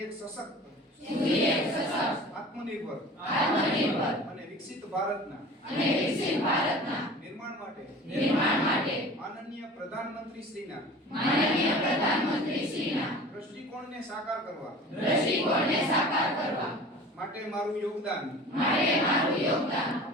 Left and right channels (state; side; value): normal; both; correlation 0.41